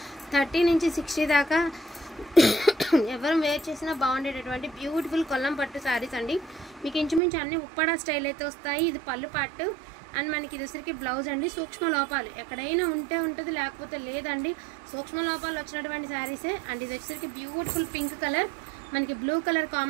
30 నుంచి 60 దాకా ఎవరం వేర్ చేసినా బాగుండేటటువంటి బ్యూటిఫుల్ కొల్లం పట్టు సారీస్ అండి। మీకు ఇంచుమించు అన్ని ఉప్పాడ స్టైల్ అయితే వస్తాయి। ఇది పళ్ళు పార్ట్ అండ్ మనకి ఇది వచ్చరికి బ్లౌజ్ అండి। సూక్ష్మ లోపాలు ఎక్కడైనా ఉంటే ఉంటుంది, లేకపోతే లేదండి। సూక్ష్మ లోపాలు వచ్చినటువంటి శారీసే అండ్ ఇది వచ్చరికి బ్యూటిఫుల్ పింక్ కలర్, మనకి బ్లూ కలర్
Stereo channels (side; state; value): left; drops out; at 7.2 s